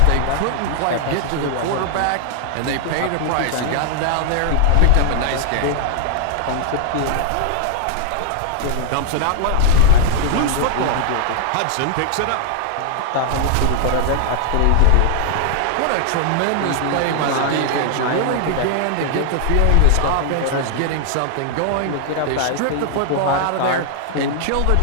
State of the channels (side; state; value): both; different; correlation 0.00